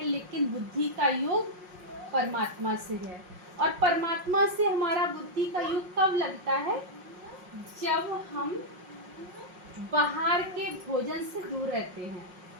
लेकिन बुद्धि का योग परमात्मा से है। और परमात्मा से हमारा बुद्धि का योग कब लगता है, जब हम बाहर के भोजन से दूर रहते हैं,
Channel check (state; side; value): late; left; 5.5 ms